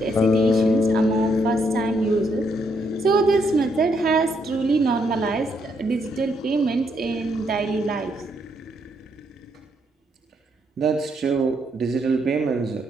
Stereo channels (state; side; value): normal; both; correlation 0.75